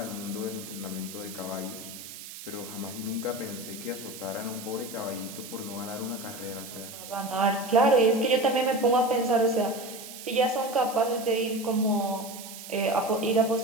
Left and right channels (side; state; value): right; noise; hiss, 12 dB below the sound